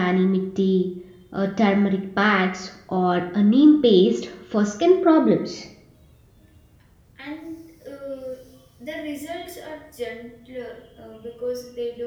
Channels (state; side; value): identical; both; correlation 1.00